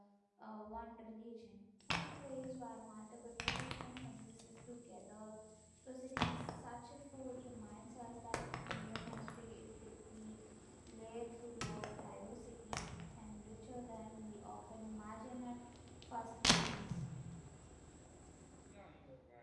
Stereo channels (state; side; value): identical; both; correlation 1.00